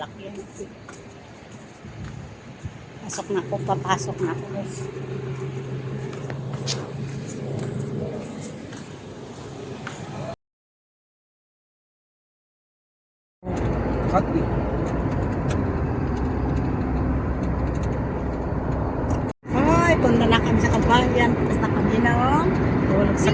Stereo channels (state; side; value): identical; both; correlation 1.00